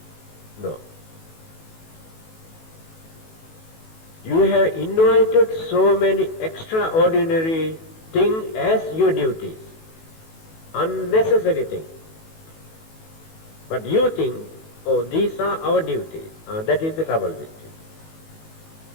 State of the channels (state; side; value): late; right; 18 ms